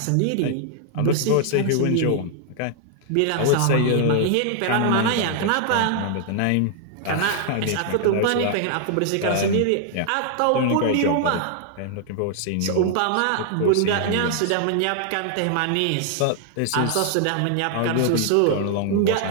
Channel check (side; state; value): both; different; correlation 0.00